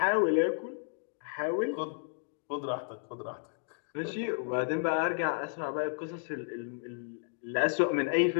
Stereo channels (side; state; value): right; silent; digital silence